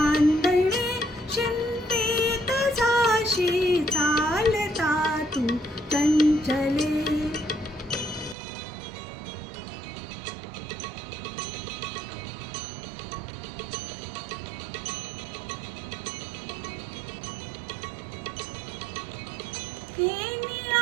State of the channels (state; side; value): drops out; left; at 8.3 s